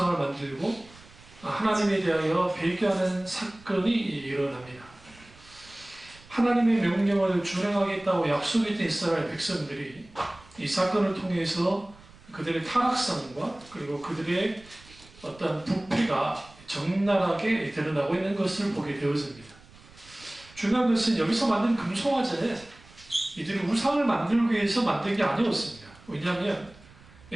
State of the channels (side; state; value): right; noise; rumble, 24 dB below the sound